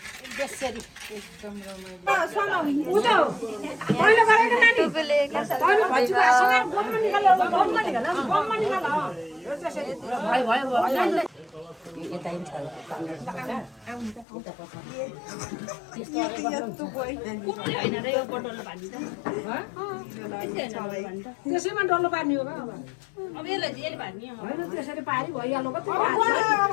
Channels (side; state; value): right; drops out; at 14.2 s